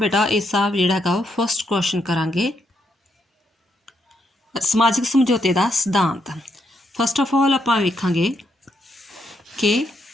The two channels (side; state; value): both; normal; correlation 0.78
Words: ਇਸ ਦਾ ਜਿਹੜਾ ਹੈਗਾ ਫਸਟ ਕੁਐਸਚਨ ਕਰਾਂਗੇ ਸਮਾਜਿਕ ਸਮਝੌਤੇ ਦਾ ਸਿਧਾਂਤ। ਫਸਟ ਆਫ ਆਲ ਆਪਾਂ ਵੇਖਾਂਗੇ ਕਿ